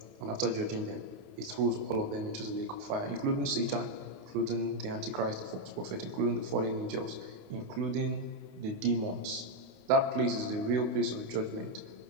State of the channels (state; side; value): late; left; 28 ms